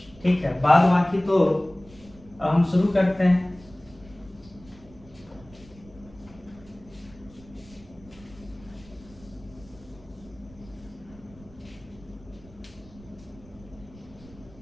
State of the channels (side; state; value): right; noise; rumble, 22 dB below the sound